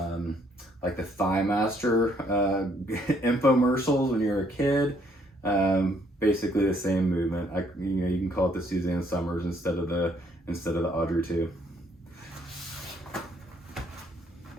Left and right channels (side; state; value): both; normal; correlation 0.67